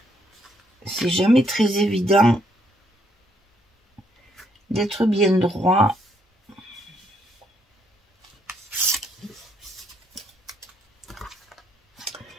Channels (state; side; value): normal; both; correlation 0.72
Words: C'est jamais très évident d'être bien droit.